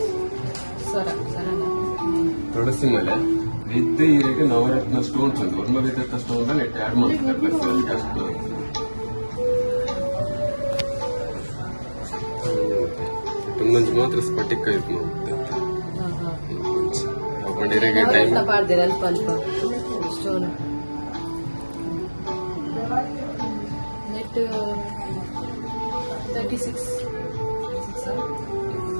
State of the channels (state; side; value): inverted; both; correlation -1.00